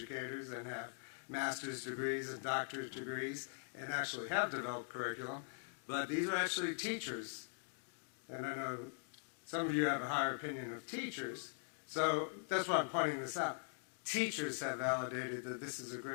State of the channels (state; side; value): silent; right; digital silence